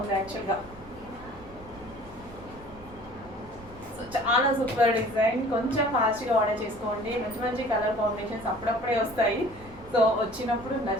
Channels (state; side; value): noise; right; rumble, 20 dB below the sound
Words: యాక్చువల్గా. సో చాలా సూపర్ డిజైన్. కొంచెం ఫాస్ట్గా ఆర్డర్ చేసుకోండి. మంచి మంచి కలర్ కాంబినేషన్స్ అప్పుడప్పుడే వస్తాయి. సో వచ్చినప్పుడు